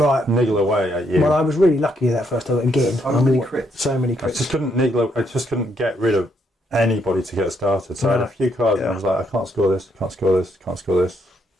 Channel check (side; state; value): both; normal; correlation 0.74